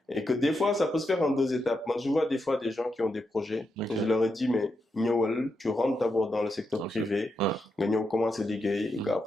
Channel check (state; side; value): normal; both; correlation 0.84